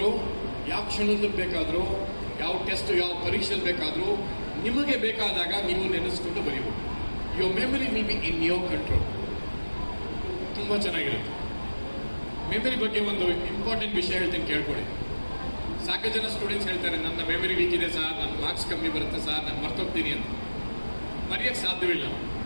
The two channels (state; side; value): inverted; both; correlation -1.00